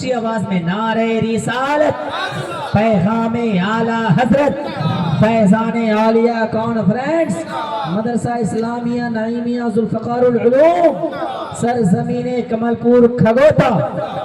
آواز میں نعرہ رسالت، پیغام اعلیٰ حضرت، فیضان عالیہ کانفرنس، مدرسہ اسلامیہ نعیمیہ ذوالفقار العلوم، سرزمین کمل پور کھگوتا،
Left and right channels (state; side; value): identical; both; correlation 1.00